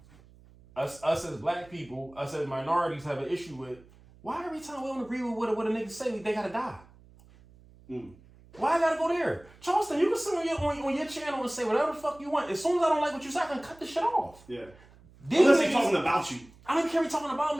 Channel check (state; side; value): noise; right; hum, 25 dB below the sound